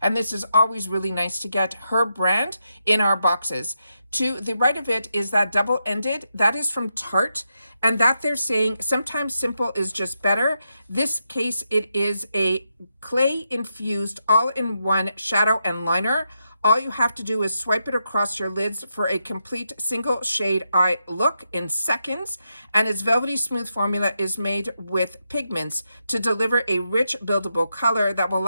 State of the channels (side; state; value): both; inverted; correlation -0.85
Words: and this is always really nice to get her brand in our boxes. To the right of it is that double-ended. That is from Tarte, and that they're saying sometimes simple is just better. This case, it is a clay-infused all-in-one shadow and liner. All you have to do is swipe it across your lids for a complete single shade eye look in seconds. And its velvety smooth formula is made with pigments to deliver a rich buildable color that will